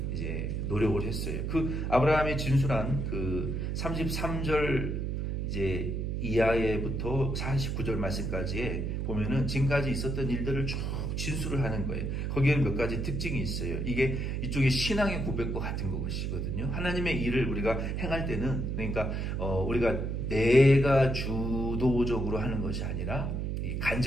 이제 노력을 했어요. 그 아브라함이 진술한 그 33절 이제 이하에부터 49절 말씀까지에 보면은 지금까지 있었던 일들을 쭉 진술을 하는 거예요. 거기에는 몇 가지 특징이 있어요. 이게 이쪽에 신앙의 고백과 같은 것이거든요. 하나님의 일을 우리가 행할 때는, 그러니까 우리가 내가 주도적으로 하는 것이 아니라 이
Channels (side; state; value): right; noise; hum, 1 dB below the sound